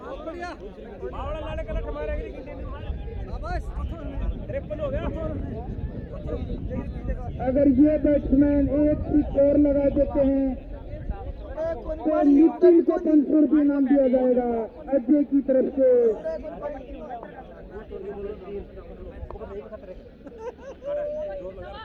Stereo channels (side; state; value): both; identical; correlation 1.00